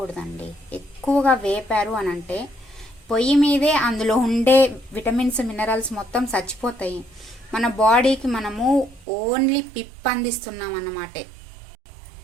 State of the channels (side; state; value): left; drops out; at 9.1 s